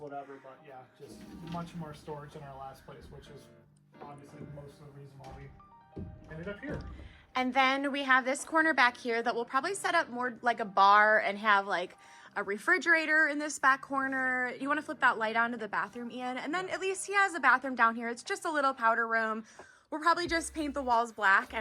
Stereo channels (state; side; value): identical; both; correlation 1.00